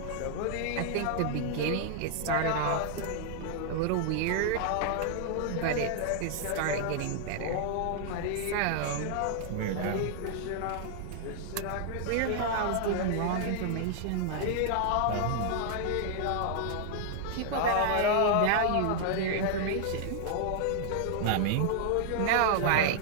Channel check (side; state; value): both; different; correlation -0.01